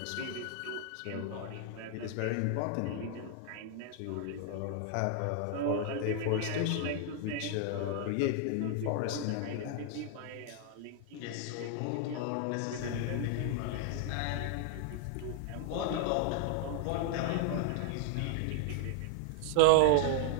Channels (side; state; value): both; different; correlation 0.00